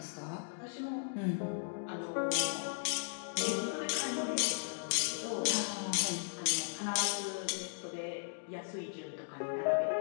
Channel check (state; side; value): silent; right; digital silence